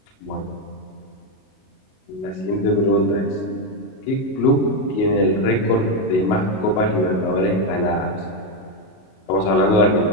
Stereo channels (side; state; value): right; late; 38 ms